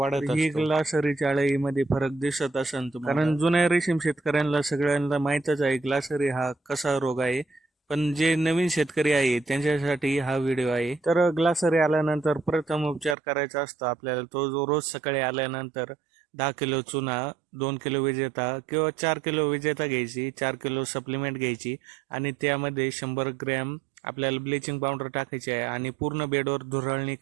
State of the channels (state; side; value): drops out; left; at 13.2 s